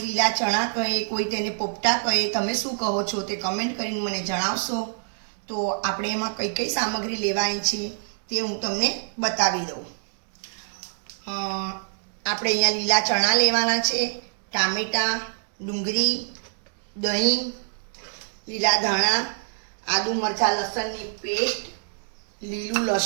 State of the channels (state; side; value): silent; left; digital silence